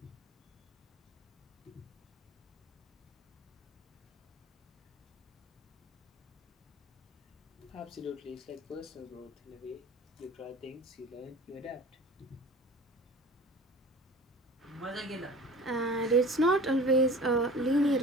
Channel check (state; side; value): normal; both; correlation 0.41